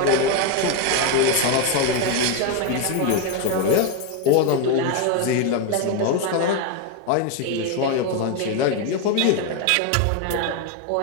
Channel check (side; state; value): both; different; correlation 0.02